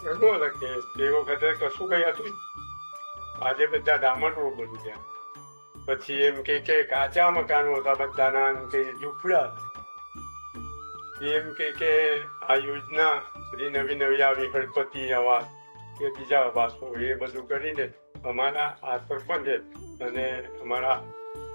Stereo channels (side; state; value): both; inverted; correlation -1.00